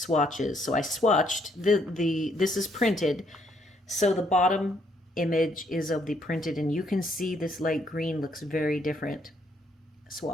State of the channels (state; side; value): normal; both; correlation 0.70